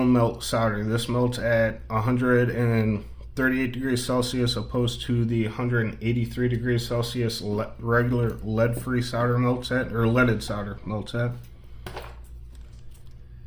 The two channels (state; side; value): identical; both; correlation 1.00